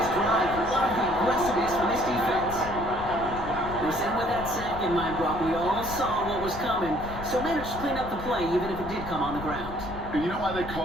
drive. Love the aggressiveness from this defense. Listen, with that sack in mind, Brock, we all saw what was coming, so managed to clean up the play, even if it did come on the ground. And you know why they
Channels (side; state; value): left; noise; rumble, 12 dB below the sound